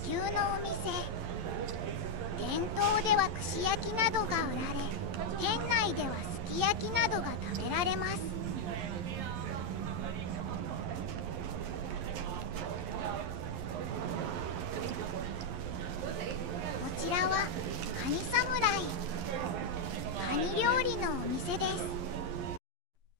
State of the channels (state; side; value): late; left; 11 ms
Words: 牛のお店。店頭では串焼きなどが売られ、店内ではすき焼きなどが食べられます。こちらはカニ侍。カニ料理のお店です。